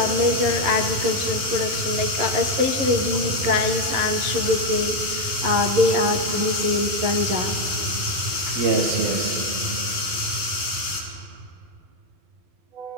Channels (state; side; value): late; left; 11 ms